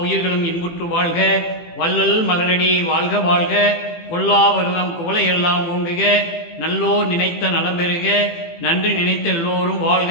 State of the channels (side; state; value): right; late; 18 ms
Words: இன்புற்று வாழ்க, வள்ளல் மலரடி வாழ்க வாழ்க, கொல்லாவரதம் குவளையெல்லாம் ஓங்குக, நல்லோர் நினைத்த நலம் பெறுக, நன்றி நினைத்த எல்லோரும் வாழ்க